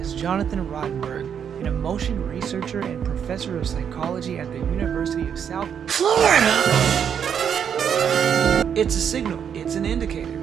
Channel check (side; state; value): left; quieter; 8.0 dB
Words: Jonathan Rottenberg, an emotion researcher and professor of psychology at the University of South Florida. It's a signal, it's an indicator.